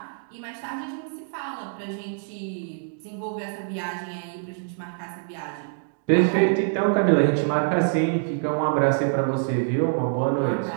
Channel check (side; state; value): left; silent; digital silence